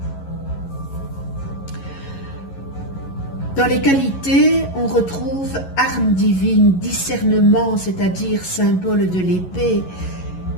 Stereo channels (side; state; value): right; late; 11 ms